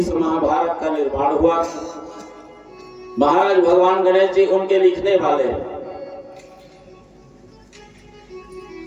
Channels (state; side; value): identical; both; correlation 1.00